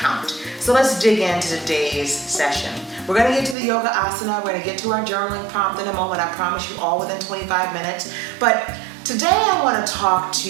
So let's dig into today's session. We're going to get to the yoga asana. We're going to get to our journaling prompt in a moment. I promise you all within 25 minutes. But today I want to talk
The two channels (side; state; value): left; drops out; at 3.6 s